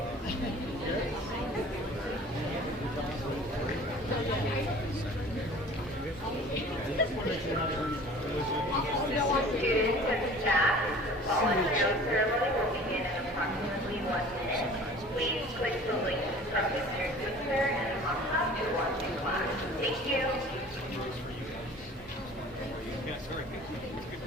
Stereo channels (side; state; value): both; normal; correlation 0.45